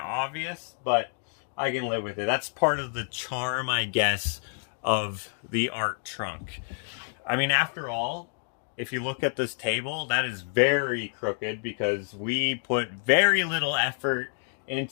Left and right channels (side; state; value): right; silent; 59 dB below the other